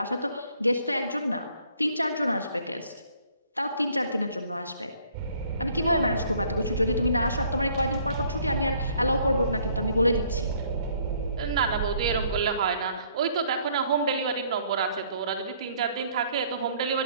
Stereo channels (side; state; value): both; inverted; correlation -0.62